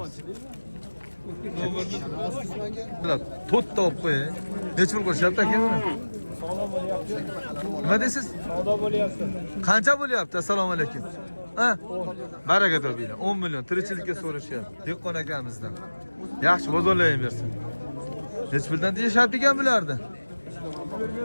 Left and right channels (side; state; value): both; inverted; correlation -1.00